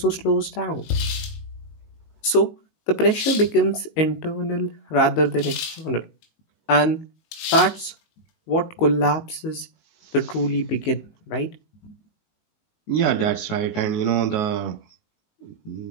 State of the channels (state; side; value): late; right; 19 ms